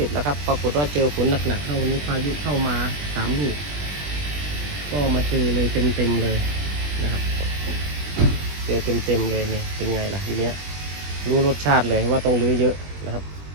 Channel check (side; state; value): left; late; 20 ms